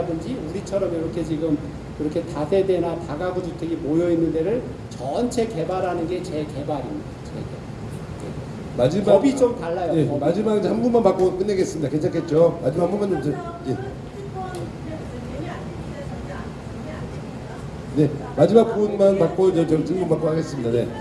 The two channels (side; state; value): both; identical; correlation 1.00